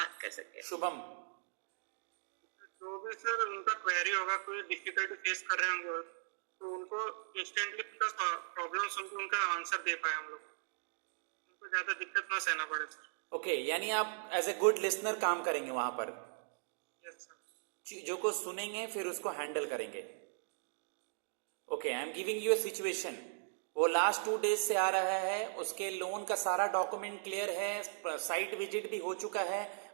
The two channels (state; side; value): silent; left; digital silence